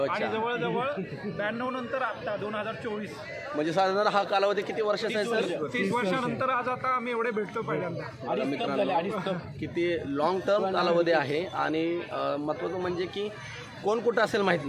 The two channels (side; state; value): both; identical; correlation 1.00